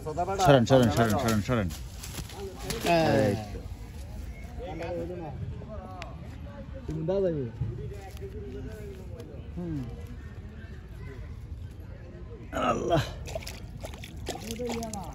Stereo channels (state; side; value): identical; both; correlation 1.00